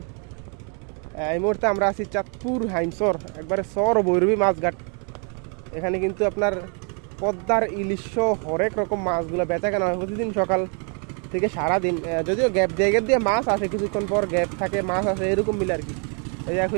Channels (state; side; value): quieter; left; 38.3 dB